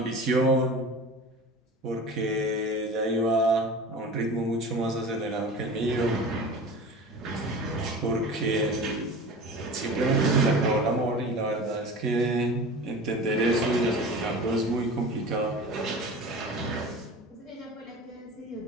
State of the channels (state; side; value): normal; both; correlation 0.36